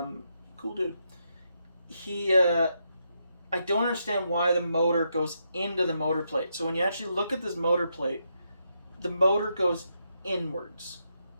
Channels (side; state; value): both; inverted; correlation -0.81